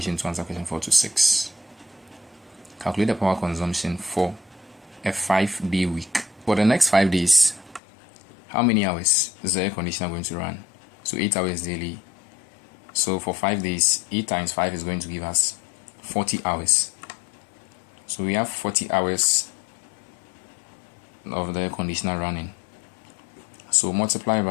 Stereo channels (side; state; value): right; drops out; at 7.8 s